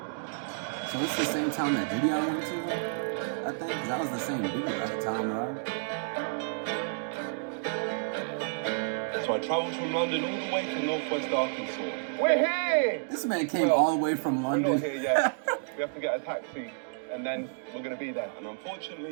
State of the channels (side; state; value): left; silent; digital silence